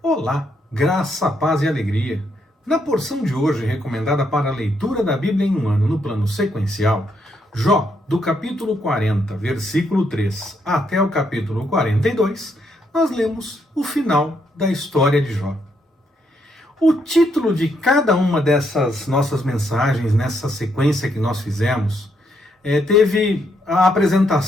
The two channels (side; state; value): both; normal; correlation 0.76